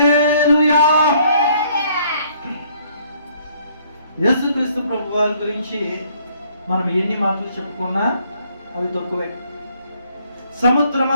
యేసుక్రీస్తు ప్రభు వారి గురించి మనం ఎన్ని మాటలు చెప్పుకున్నా అవి తక్కువే.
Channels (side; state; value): both; inverted; correlation -0.64